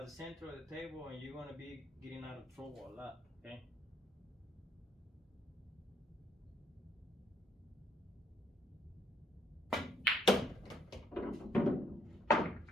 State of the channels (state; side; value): normal; both; correlation 0.70